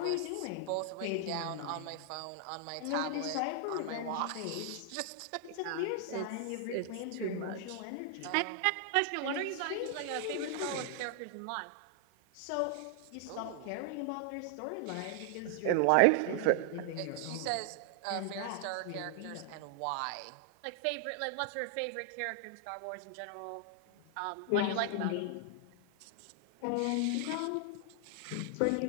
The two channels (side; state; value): both; different; correlation 0.00